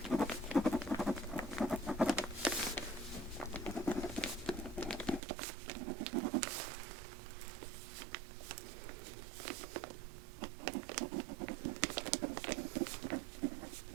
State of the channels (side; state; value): left; drops out; at 5.2 s